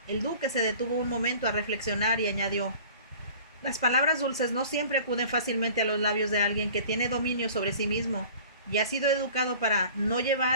El duque se detuvo un momento a reflexionar y añadió: «Las palabras dulces no siempre acuden fácilmente a los labios de alguien que tiene dominio sobre sí mismo y ha sido educado para no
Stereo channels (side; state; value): both; inverted; correlation -0.44